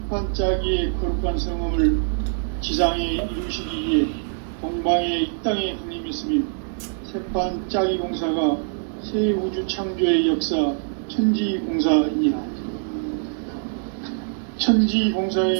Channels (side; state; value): left; silent; digital silence